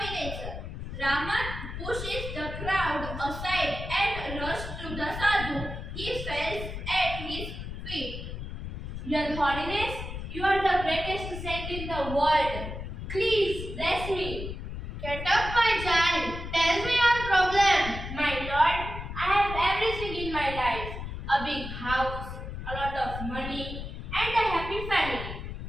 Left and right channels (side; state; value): left; noise; rumble, 7 dB below the sound